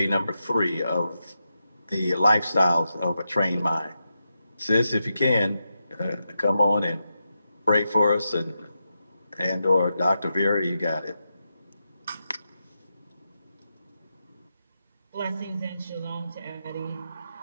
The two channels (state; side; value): inverted; both; correlation -0.88